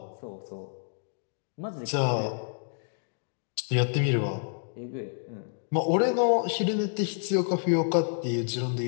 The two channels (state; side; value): silent; right; digital silence